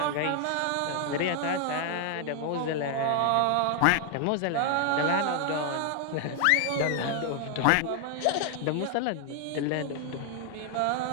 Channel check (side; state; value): both; different; correlation 0.00